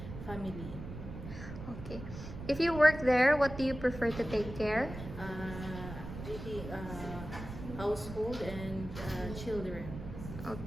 family. Okay. If you work there, what do you prefer to take care? Household and children.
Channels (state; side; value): noise; right; rumble, 10 dB below the sound